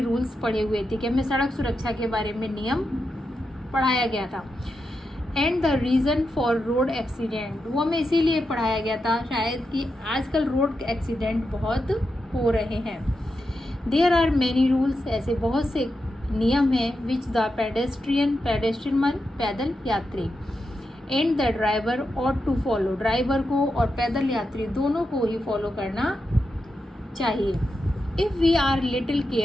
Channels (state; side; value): normal; both; correlation 0.87